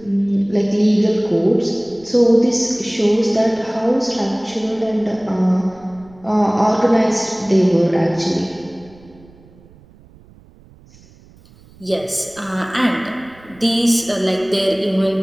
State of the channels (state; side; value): noise; right; rumble, 26 dB below the sound